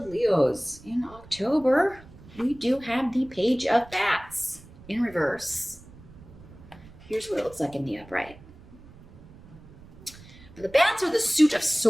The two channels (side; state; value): right; noise; rumble, 21 dB below the sound